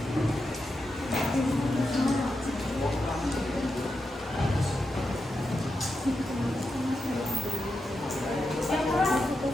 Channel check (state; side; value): normal; both; correlation 0.88